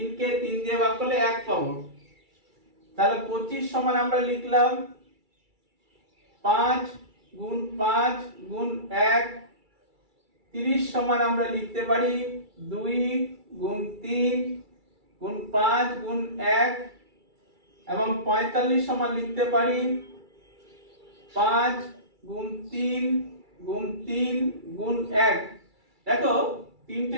কে 3 দিয়ে ভাগ করলে 1 পাবো। তাহলে 25 সমান আমরা লিখলাম 5 গুণ 5 গুণ 1। 30 সমান আমরা লিখতে পারি 2 গুণ 3 গুণ 5 গুণ 1 এবং 45 সমান লিখতে পারি 5 গুণ 3 গুণ 3 গুণ 1। দেখো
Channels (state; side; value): late; left; 2.3 ms